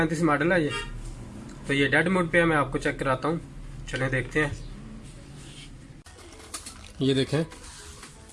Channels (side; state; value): both; identical; correlation 1.00